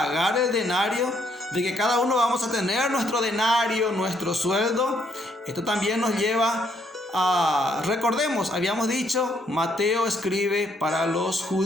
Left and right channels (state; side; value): normal; both; correlation 0.71